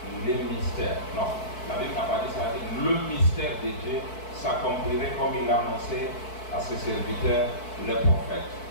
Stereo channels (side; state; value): right; late; 4.6 ms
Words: les mystères. Non, la Bible n'a pas dit ça, le mystère de Dieu s'accomplirait comme il l'a annoncé à ses serviteurs, les prophètes.